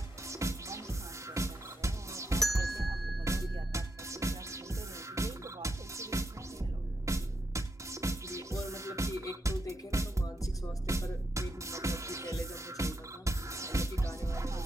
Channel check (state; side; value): normal; both; correlation 0.82